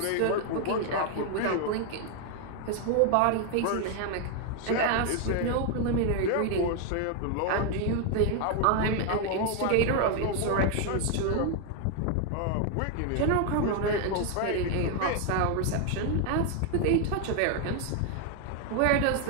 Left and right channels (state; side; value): different; both; correlation 0.01